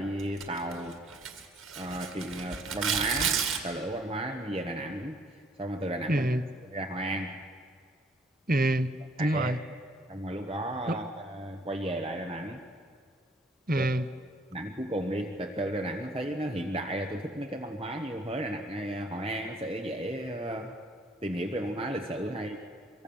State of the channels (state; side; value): normal; both; correlation 0.62